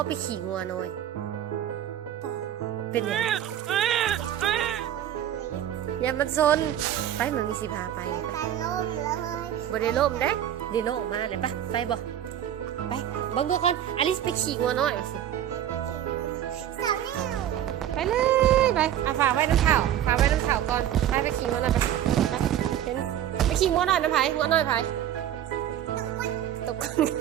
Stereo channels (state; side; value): quieter; left; 11.0 dB